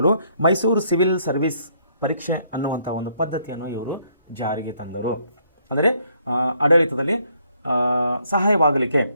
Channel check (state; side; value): inverted; both; correlation -0.69